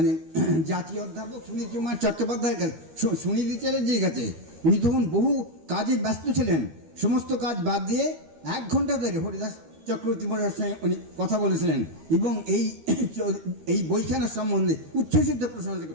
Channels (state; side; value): late; left; 13 ms